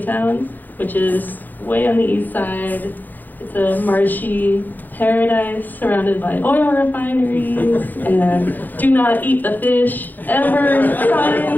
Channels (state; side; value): late; right; 0.086 ms